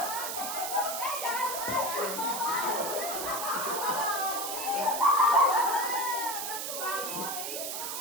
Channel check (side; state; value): right; noise; hiss, 4 dB below the sound